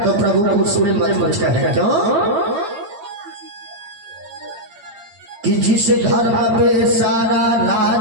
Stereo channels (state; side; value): late; left; 9.0 ms